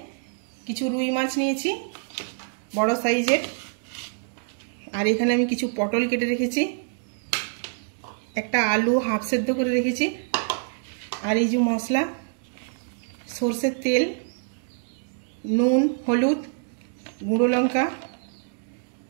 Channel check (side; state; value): left; silent; digital silence